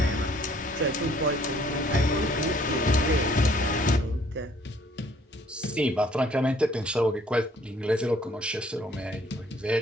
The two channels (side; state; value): both; normal; correlation 0.61